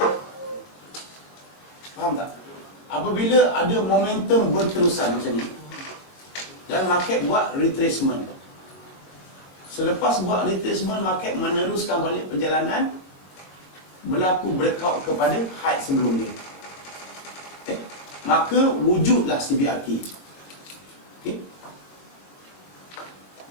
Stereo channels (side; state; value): right; late; 22 ms